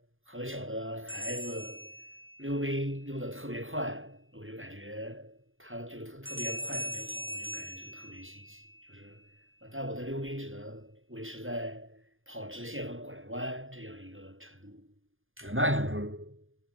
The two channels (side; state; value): left; late; 0.59 ms